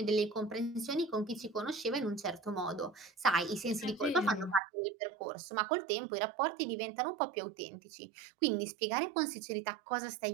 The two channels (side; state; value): left; drops out; at 4.6 s